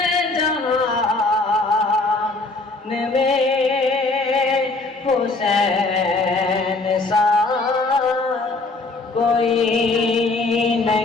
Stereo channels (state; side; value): quieter; right; 3.3 dB